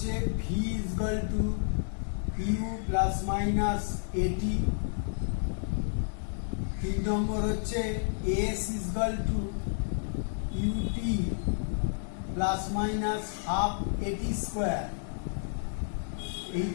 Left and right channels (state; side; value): silent; right; digital silence